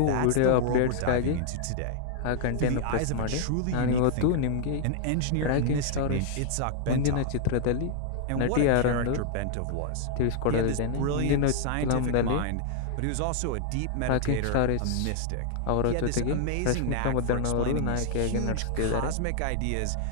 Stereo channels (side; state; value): both; different; correlation -0.01